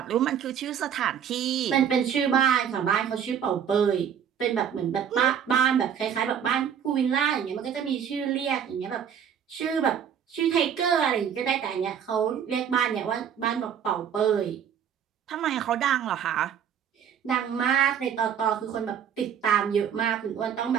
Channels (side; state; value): left; quieter; 8.4 dB